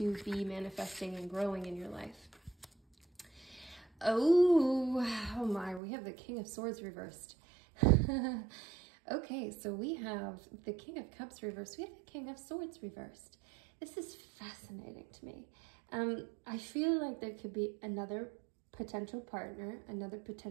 be manifesting and growing in your life. Oh my, we have the King of Swords reversed. Okay, so we have the King of Cups reversed. We have the King of Swords reversed. This is fascinating to me. I feel like there could be another potential partner, another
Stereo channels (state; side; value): drops out; left; at 5.8 s